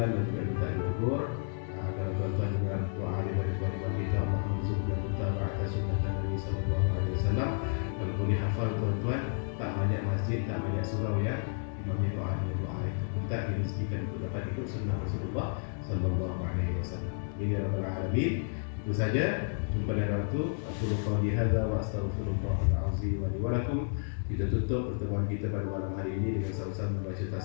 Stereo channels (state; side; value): silent; right; 56 dB below the other